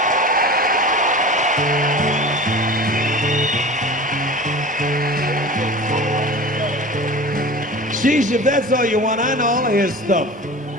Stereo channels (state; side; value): normal; both; correlation 0.35